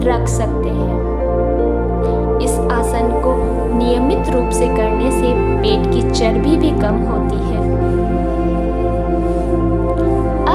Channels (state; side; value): identical; both; correlation 1.00